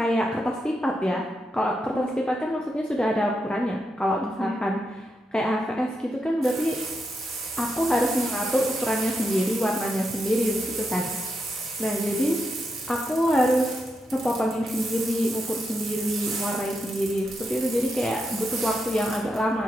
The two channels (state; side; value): normal; both; correlation 0.84